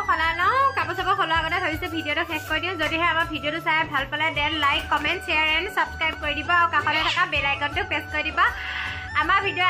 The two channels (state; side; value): identical; both; correlation 1.00